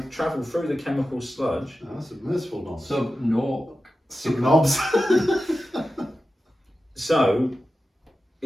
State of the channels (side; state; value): both; normal; correlation 0.92